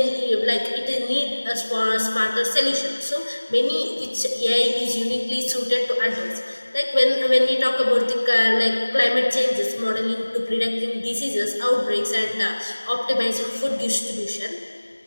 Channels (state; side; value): inverted; both; correlation -1.00